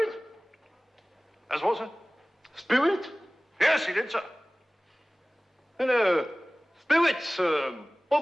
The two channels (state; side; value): normal; both; correlation 0.98